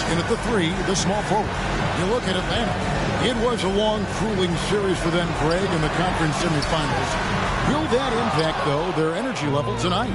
in at the 3, the small forward. You look at Atlanta. It was a long, grueling series for them, Greg, in the conference semifinals. Will that impact, though, their energy level tonight?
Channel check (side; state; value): both; identical; correlation 1.00